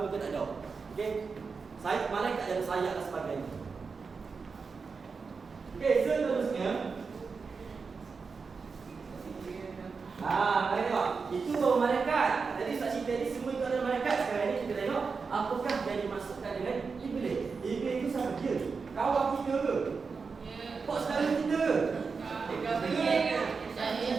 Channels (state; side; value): quieter; left; 5.0 dB